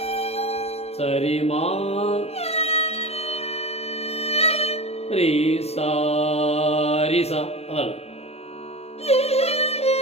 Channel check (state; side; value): late; right; 0.30 ms